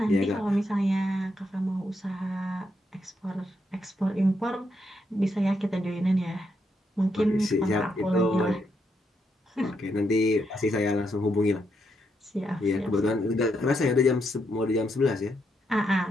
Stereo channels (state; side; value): normal; both; correlation 0.79